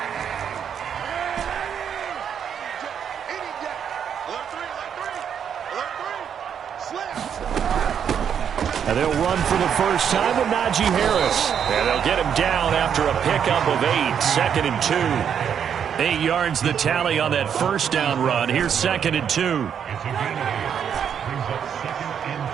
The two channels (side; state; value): left; quieter; 8.1 dB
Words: And they'll run for the first time with Najee Harris. And they'll get him down after a pickup of 8, 2nd and 2. 8 yards the tally on that first down run. Here's 2nd and 2.